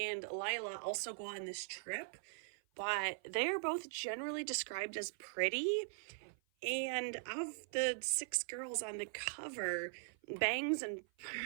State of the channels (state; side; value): silent; left; 50 dB below the other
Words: Lila also go on this trip, but they are both generally described as pretty. And of the 6 girls on the cover, Bangs and